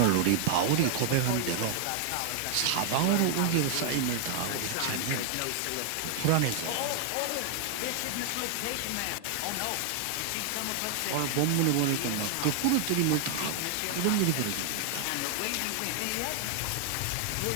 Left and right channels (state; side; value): different; both; correlation 0.00